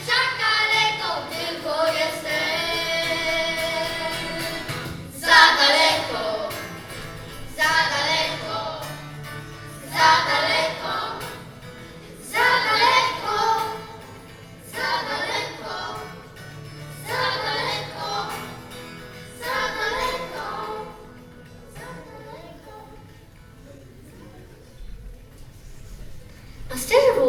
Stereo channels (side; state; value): both; identical; correlation 1.00